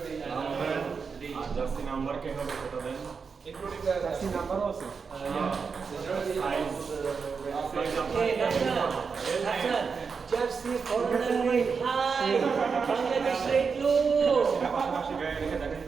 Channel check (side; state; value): left; quieter; 5.5 dB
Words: জার্সি নাম্বার কে হবে সেটা দেন ইনক্লুডিং দ্য জার্সি নাম্বারও আছে jersey foreigner high Bangladesh rate low পাশাপাশি গায়ে রেখে দেখেন